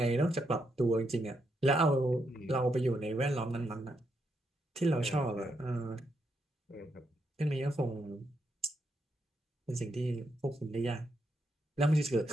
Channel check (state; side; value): normal; both; correlation 0.80